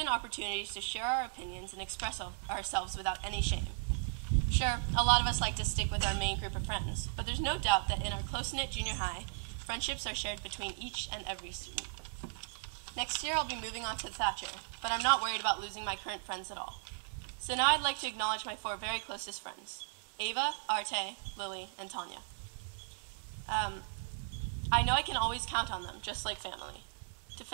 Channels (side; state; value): left; silent; 53 dB below the other